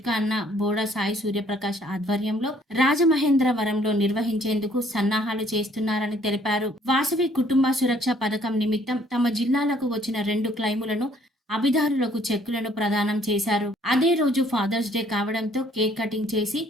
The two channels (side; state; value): both; normal; correlation 0.62